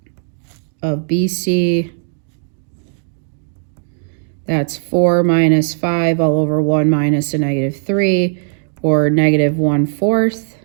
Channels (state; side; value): silent; left; digital silence